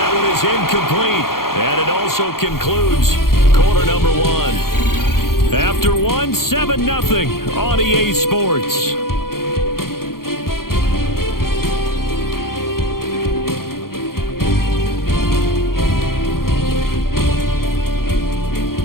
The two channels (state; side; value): late; right; 0.93 ms